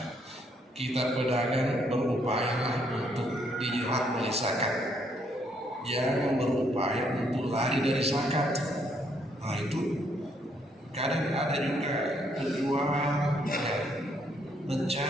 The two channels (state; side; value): normal; both; correlation 0.71